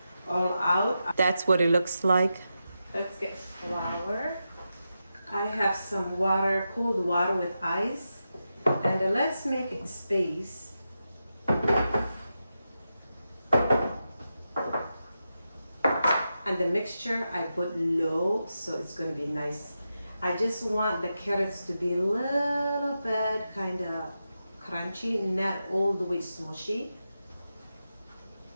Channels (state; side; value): inverted; both; correlation -0.89